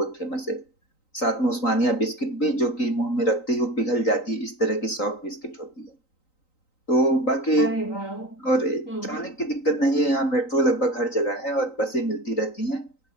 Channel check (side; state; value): right; late; 3.9 ms